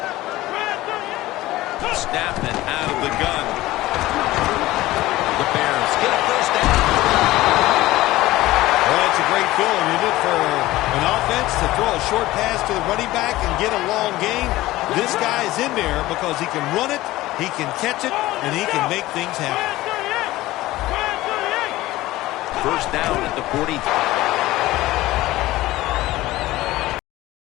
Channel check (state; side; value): quieter; right; 17.3 dB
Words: Snapped it out of the gun. The Bears get a first down. Well, that's a great feeling, isn't it, for an offense to throw a short pass to the running back and get a long gain. This guy is in there because he can run it, he can catch it, and he can make things happen. First down at the 40.